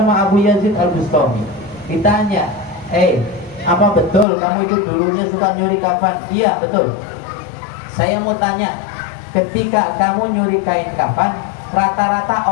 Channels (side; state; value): right; drops out; at 4.2 s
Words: Abu Yazid Al-Bustami. Ditanya, apa betul kamu itu dulunya suka nyuri kafan? Iya, betul. Saya mau tanya, ketika kamu nyuri kain kafan, rata-rata